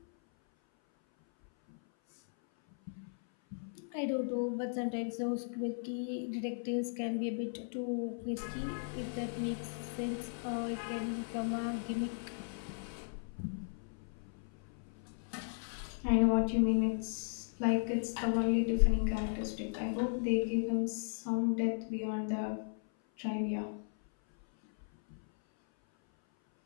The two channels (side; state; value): right; silent; 54 dB below the other